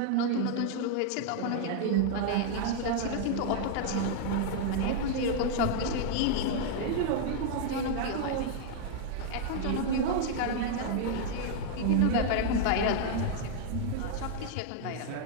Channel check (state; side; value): different; both; correlation 0.00